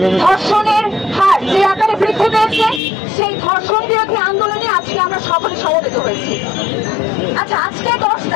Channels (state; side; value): drops out; right; at 2.8 s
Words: ধর্ষণের হার যে আকারে বৃদ্ধি পেয়েছে, সেই ধর্ষণ বিরোধী আন্দোলনে আজকে আমরা সকলে সমবেত হয়েছি। আচ্ছা, আজকে 10